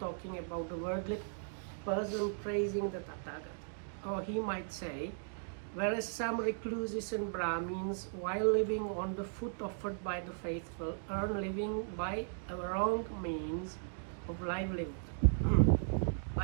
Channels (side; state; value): left; silent; digital silence